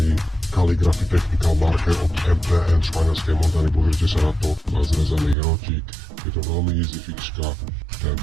Calligraphy Technical Marker od MTN španielskej Montany. Pozrite sa na to, má zrezaný hrotík. Je to veľmi easy fixka,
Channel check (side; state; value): left; drops out; at 5.4 s